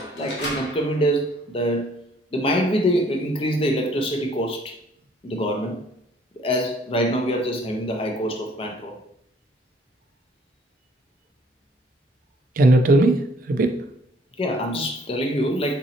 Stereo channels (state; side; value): normal; both; correlation 0.61